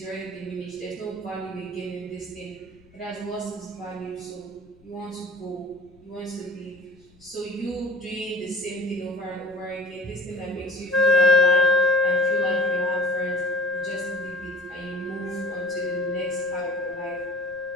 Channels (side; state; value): left; noise; rumble, 28 dB below the sound